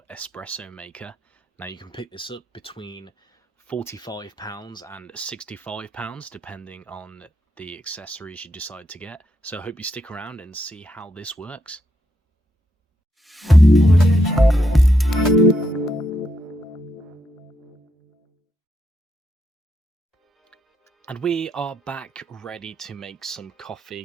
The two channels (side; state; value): both; normal; correlation 0.80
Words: Espresso maker. Now you can pick this up between £45 and £65 depending on the accessories you decide to get. So I hope you stick around and see how this works. And we are back ready to make some